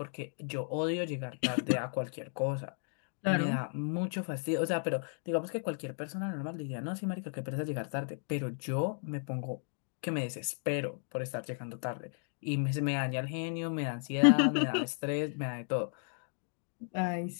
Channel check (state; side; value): silent; right; 55 dB below the other